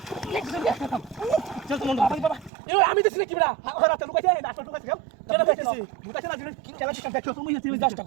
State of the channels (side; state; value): left; drops out; at 2.5 s